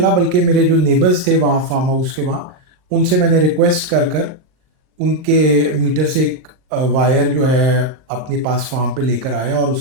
बल्कि मेरे जो नेबर्स थे वहाँ फार्म हाउस के वहाँ, उनसे मैंने रिक्वेस्ट कर कर उनके मीटर से एक वायर जो है अपने पास फार्म पे लेकर आया, और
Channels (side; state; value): left; late; 38 ms